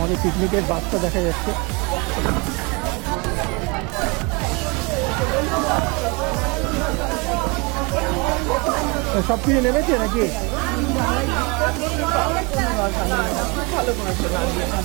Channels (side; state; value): left; quieter; 29.0 dB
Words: পিকনিকের বাসটা দেখা যাচ্ছে। সব কিছু নেমেছে নাকি?